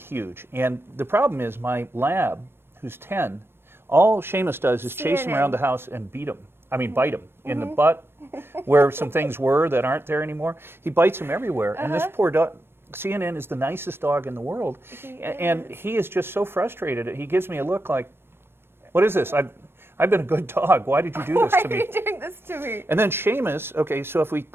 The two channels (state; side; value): late; left; 0.11 ms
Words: And the problem is my lab, who's 10, all Seamus does is chase him CNN. around the house and bite him in the butt, where some things were that aren't there anymore. He bites him everywhere. And this poor dog, CNN is the nicest dog in the world. And he is just so frustrated. He gives me a look like, what is this? I've been a good dog. Why did you do this Why to are me? you doing this to me? And then Seamus, okay, so if we